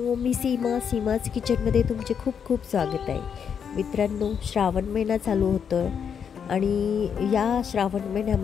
मी सीमाज किचनमध्ये तुमचे खूप खूप स्वागत आहे. मित्रांनो, श्रावण महिना चालू होतो आहे आणि या श्रावण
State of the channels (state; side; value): quieter; right; 7.3 dB